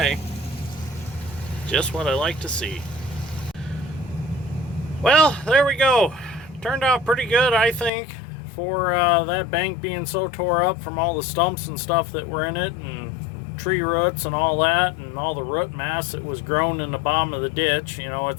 Just what I like to see. Well, there we go. Turned out pretty good, I think, for that bank being so tore up from all the stumps and stuff that were in it, and tree roots and all that, and all the root mass that was grown in the bottom of the ditch. You know,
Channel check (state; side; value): drops out; right; at 7.9 s